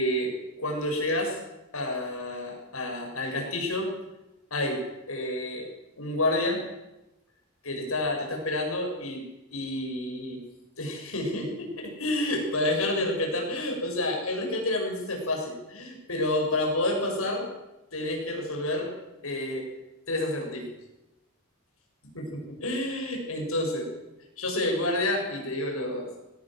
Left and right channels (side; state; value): both; normal; correlation -0.04